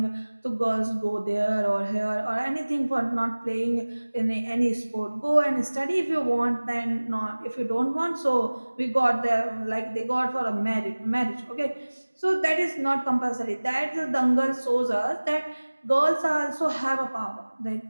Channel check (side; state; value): both; inverted; correlation -1.00